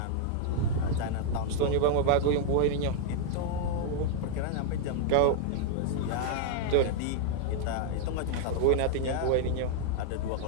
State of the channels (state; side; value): different; both; correlation -0.01